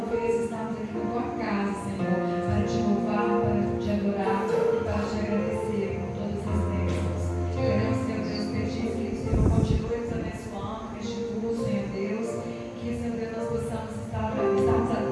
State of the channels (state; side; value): identical; both; correlation 1.00